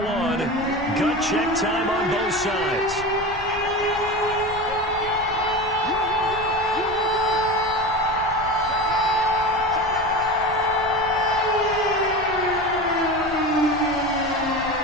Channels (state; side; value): noise; left; rumble, 16 dB below the sound